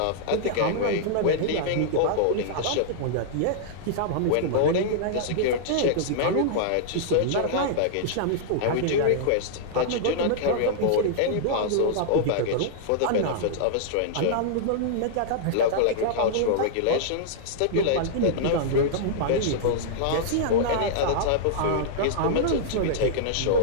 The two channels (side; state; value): both; different; correlation -0.02